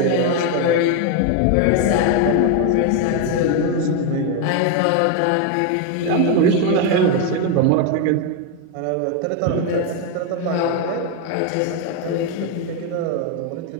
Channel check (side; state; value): both; different; correlation 0.01